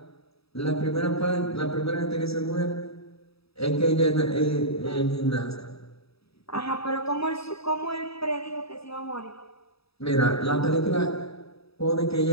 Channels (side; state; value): right; late; 0.77 ms